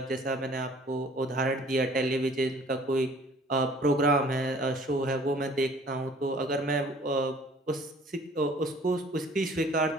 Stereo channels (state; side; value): normal; both; correlation 0.53